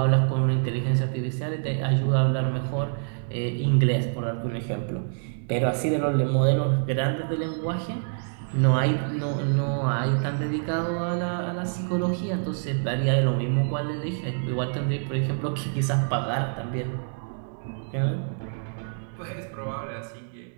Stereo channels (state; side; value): silent; left; digital silence